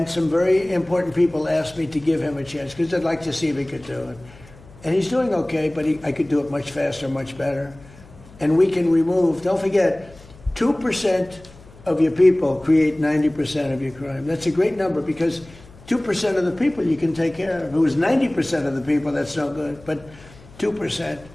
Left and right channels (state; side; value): noise; left; hum, 22 dB below the sound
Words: some very important people asked me to give him a chance because they'd like to see if he could do it. And he's doing okay, but I could do it much faster, much better. And we can remove, don't forget, 2% of your people create 90% of your crime. That's a great number because 2% of the people you can take care of. If it was 90% of the people, that's no good. But 2%.